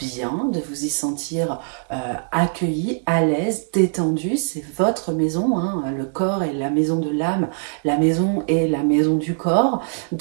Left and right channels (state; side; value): silent; left; 64 dB below the other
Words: de vous y sentir accueilli, à l'aise, détendu. C'est votre maison, hein. Le corps est la maison de l'âme, la maison est la maison du corps.